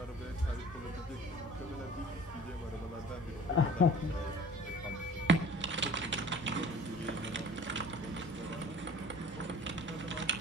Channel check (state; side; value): normal; both; correlation 0.46